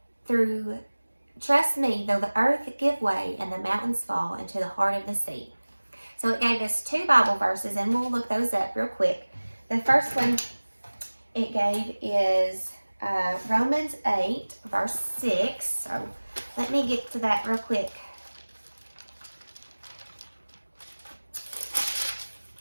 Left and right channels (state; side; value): inverted; both; correlation -1.00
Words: though the earth give way and the mountains fall into the heart of the sea. So it gave us 2 Bible verses, and we'll look those up real quick. The first one it gave is Romans 8, verse 6. So let me get to that real quick.